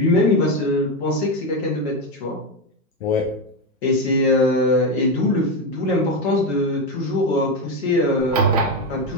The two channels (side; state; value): both; normal; correlation 0.11